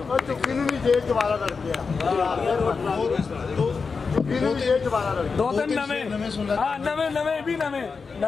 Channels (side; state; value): right; quieter; 5.0 dB